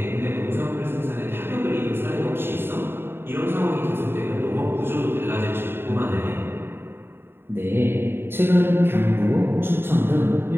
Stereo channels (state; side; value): late; left; 0.11 ms